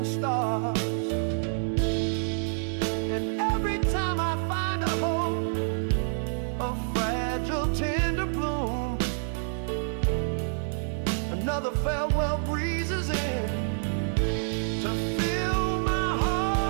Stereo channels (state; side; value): silent; left; 59 dB below the other